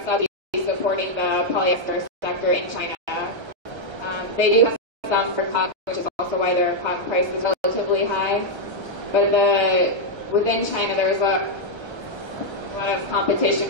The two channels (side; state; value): left; late; 1.3 ms